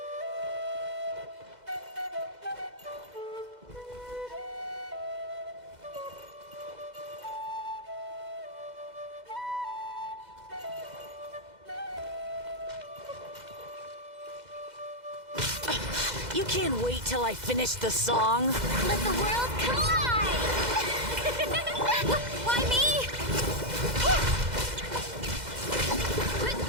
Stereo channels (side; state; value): left; late; 2.0 ms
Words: You can't wait till I finish the song? Let the world collide! Why me?